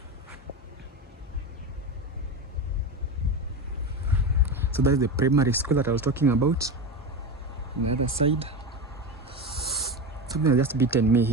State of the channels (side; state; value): both; normal; correlation 0.21